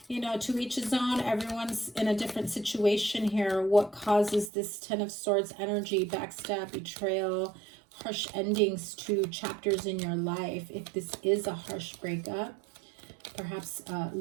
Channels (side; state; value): left; drops out; at 4.5 s